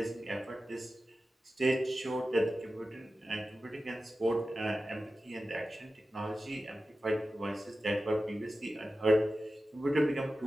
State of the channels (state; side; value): normal; both; correlation 0.94